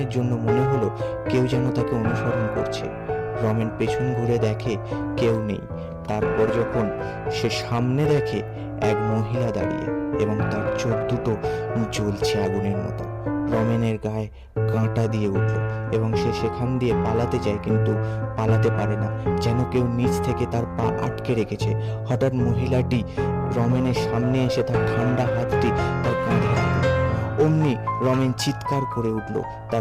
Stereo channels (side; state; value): both; identical; correlation 1.00